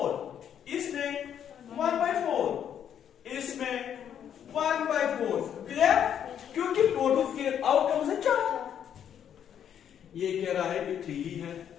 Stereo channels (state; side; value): quieter; right; 9.1 dB